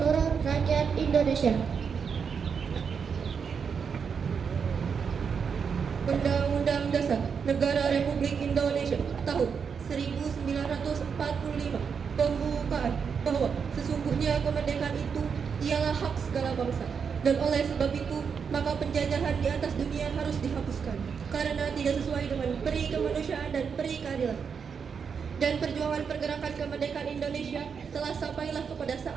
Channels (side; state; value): left; quieter; 6.4 dB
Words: rakyat Indonesia. Undang-Undang Dasar Negara Republik Indonesia tahun 1945 pembukaan bahwa sesungguhnya kemerdekaan itu ialah hak segala bangsa, dan oleh sebab itu maka penjajahan di atas dunia harus dihapuskan karena tidak sesuai dengan peri kemanusiaan dan peri keadilan. Dan perjuangan pergerakan kemerdekaan Indonesia telah sampailah kepada